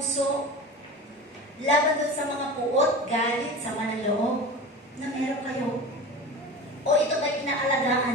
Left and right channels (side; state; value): both; normal; correlation 0.32